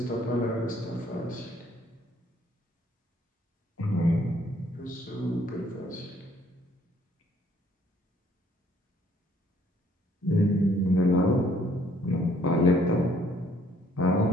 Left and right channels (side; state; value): both; normal; correlation 0.63